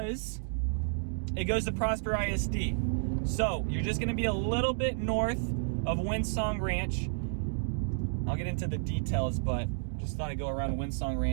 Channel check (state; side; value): silent; left; digital silence